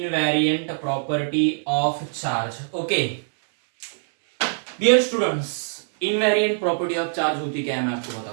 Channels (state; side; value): silent; left; 63 dB below the other